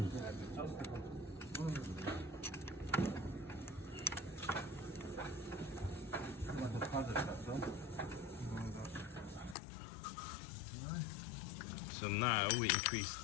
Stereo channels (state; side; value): drops out; right; at 9.6 s